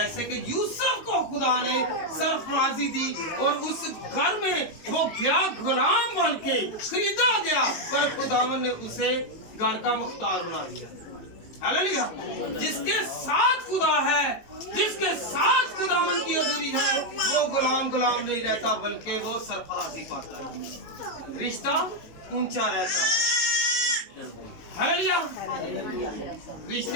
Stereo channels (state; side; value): late; right; 19 ms